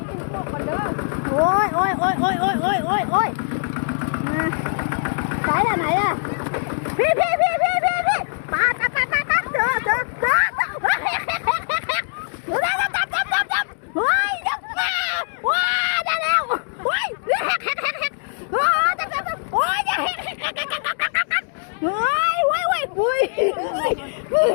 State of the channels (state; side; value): silent; right; digital silence